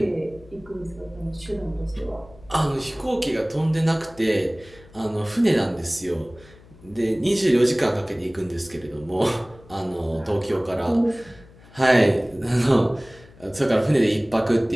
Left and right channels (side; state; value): left; noise; hum, 24 dB below the sound